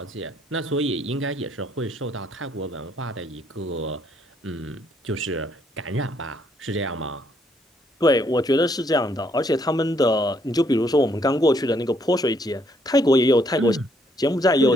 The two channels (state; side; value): normal; both; correlation 0.70